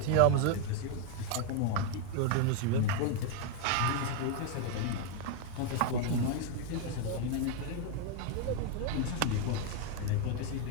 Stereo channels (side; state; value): both; different; correlation 0.01